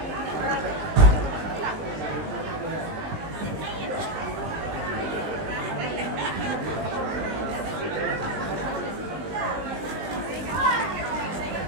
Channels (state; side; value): late; left; 19 ms